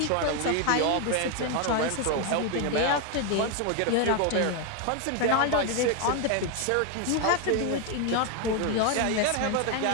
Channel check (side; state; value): both; different; correlation 0.01